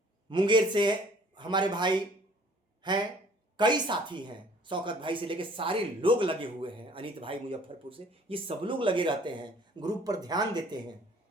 मुंगेर से हमारे भाई हैं, कई साथी हैं, शौकत भाई से लेके सारे लोग लगे हुए हैं, अनित भाई मुजफ्फरपुर से, ये सब लोग लगे रहते हैं, ग्रुप पर ध्यान देते हैं,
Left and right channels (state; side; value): normal; both; correlation 0.54